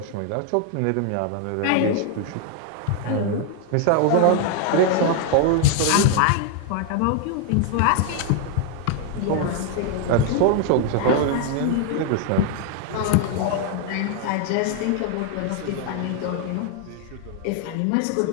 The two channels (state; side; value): different; both; correlation 0.00